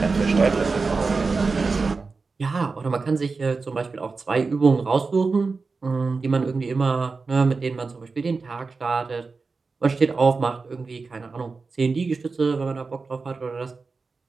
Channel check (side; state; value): left; quieter; 4.3 dB